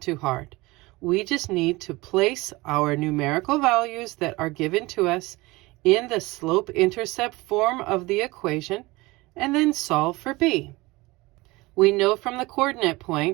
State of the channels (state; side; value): quieter; left; 21.9 dB